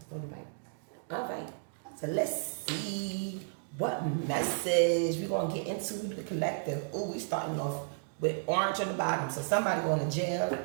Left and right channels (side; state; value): left; silent; digital silence